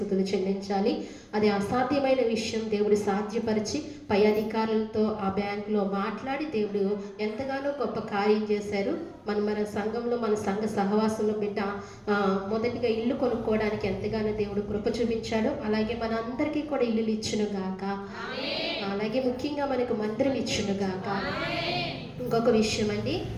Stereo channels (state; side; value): identical; both; correlation 1.00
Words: చెల్లించాలి. అది అసాధ్యమైన విషయం దేవుడు సాధ్యపరిచి పై అధికారులతో ఆ బ్యాంకులో మాట్లాడి దేవుడు ఎంతగానో గొప్ప కార్యం చేశారు. మన సంఘంలో, మన సంఘ సహవాసంలో బిడ్డ మొదటిగా ఇల్లు కొనుక్కోవడానికి ఎంతగానో దేవుడు కృప చూపించాడు. అలాగే మన అందరికీ కూడా ఇల్లులు ఇచ్చును గాక. అలాగే ముఖ్యంగా మనకు మందిరం ఇచ్చును గాక. ఇంకొక విషయం అండి,